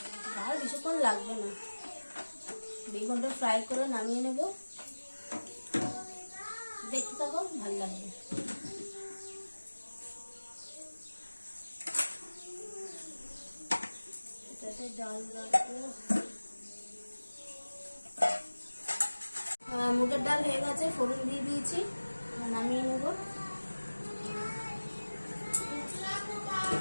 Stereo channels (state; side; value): inverted; both; correlation -1.00